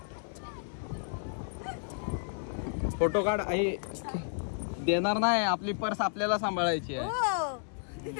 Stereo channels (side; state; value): right; silent; 56 dB below the other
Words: फोटो काढ आई. देणार नाही, आपली पर्स आपल्याला सांभाळायची आहे. हो